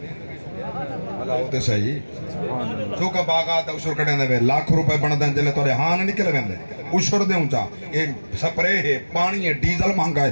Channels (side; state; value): both; inverted; correlation -1.00